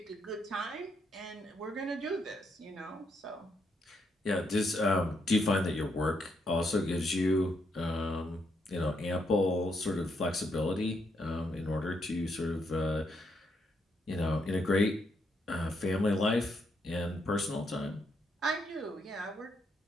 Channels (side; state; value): both; normal; correlation 0.77